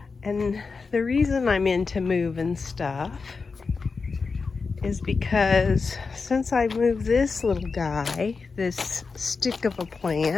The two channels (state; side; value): quieter; right; 4.6 dB